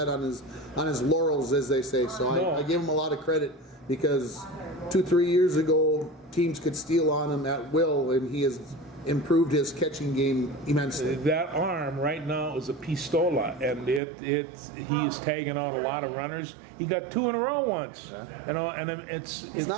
on his laurels, as they say. So No. I give him a lot of credit because 2-3 years ago, teams could steal on him at will, and he has improved his catching game immensely. that arm right now is a pistola, and he is tagging out a lot of runners. He got 2 in a row once, you know, and It's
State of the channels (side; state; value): left; drops out; at 14.0 s